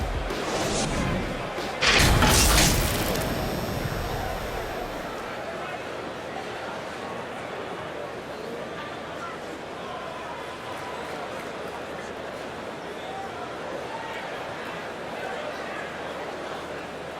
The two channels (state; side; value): identical; both; correlation 1.00